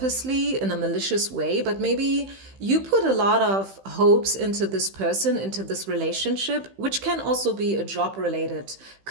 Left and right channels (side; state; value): left; late; 15 ms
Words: in a malicious way, but maybe you put a lot of hopes into this person, into this relationship, which can also be a job-related